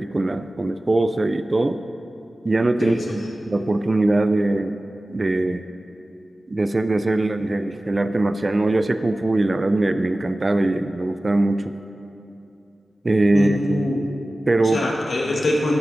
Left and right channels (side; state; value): both; normal; correlation 0.96